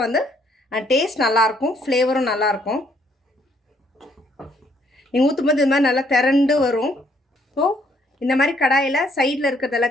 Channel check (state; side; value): normal; both; correlation 0.68